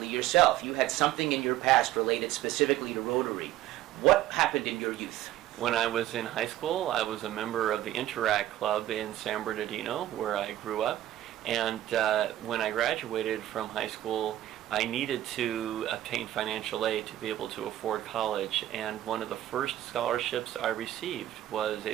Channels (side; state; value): left; quieter; 13.6 dB